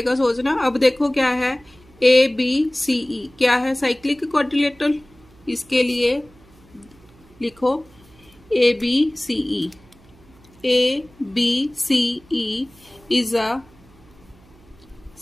सोचना। अब देखो क्या है? ABCE क्या है? Cyclic quadrilateral. इसके लिए लिखो ABCE। ABCE is a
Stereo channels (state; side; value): noise; right; hum, 27 dB below the sound